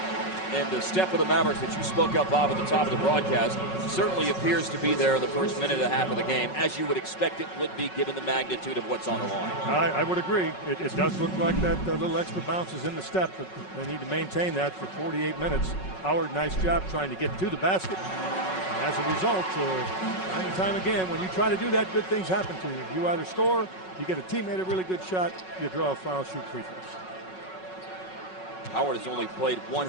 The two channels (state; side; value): late; right; 5.4 ms